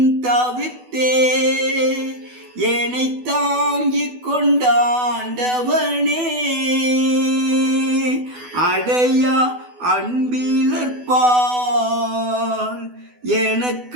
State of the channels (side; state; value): left; late; 12 ms